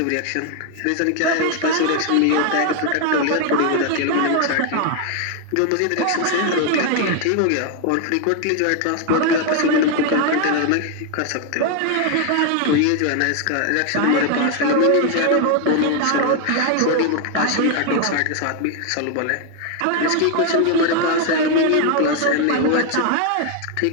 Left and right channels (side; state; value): both; different; correlation 0.01